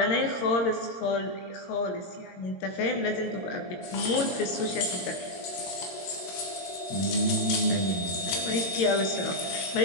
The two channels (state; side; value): late; right; 22 ms